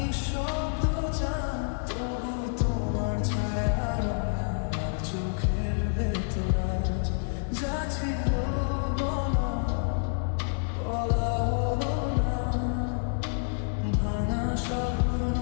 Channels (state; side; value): silent; right; digital silence